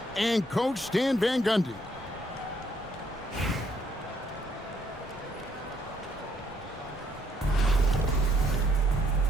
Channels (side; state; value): both; normal; correlation 0.69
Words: and Coach Stan Van Gundy.